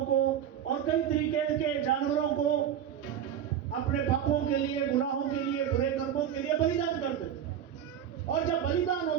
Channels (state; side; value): quieter; left; 9.6 dB